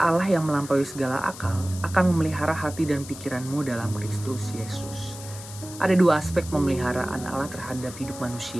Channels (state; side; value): noise; left; hiss, 14 dB below the sound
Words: yang melampaui segala akal akan memelihara hati dan pikiranmu dalam Kristus Yesus." Ada dua aspek pemeliharaan Allah terhadap hidup